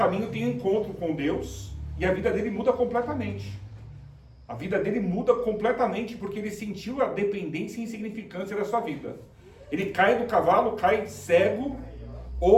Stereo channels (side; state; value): both; identical; correlation 1.00